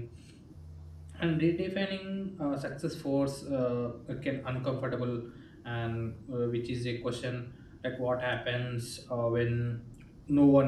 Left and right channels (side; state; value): both; identical; correlation 1.00